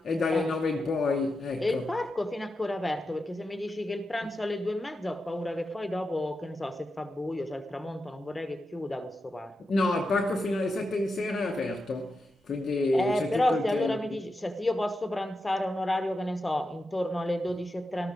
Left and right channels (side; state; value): both; normal; correlation 0.88